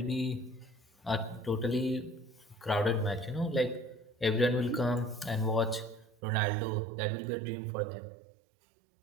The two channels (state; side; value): drops out; left; at 6.2 s